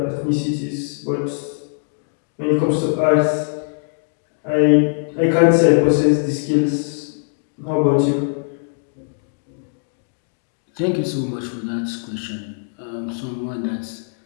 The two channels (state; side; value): silent; right; digital silence